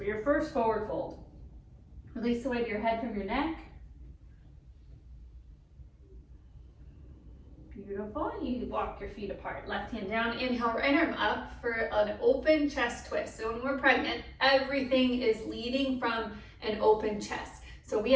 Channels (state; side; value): identical; both; correlation 1.00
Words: your first forward fold. Release the weight of your head from your neck. Beautiful. You walk your feet apart. Left hand down. Inhale, right arm up for an open chest twist. So when we're pregnant, everything is leading from an open chest. So we